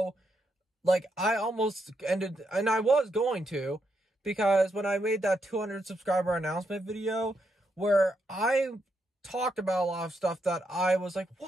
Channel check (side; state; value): both; normal; correlation 0.80